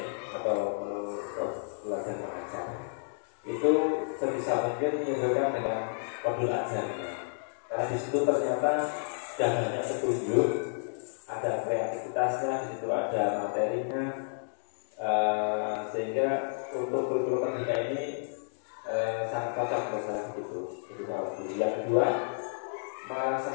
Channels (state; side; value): silent; right; digital silence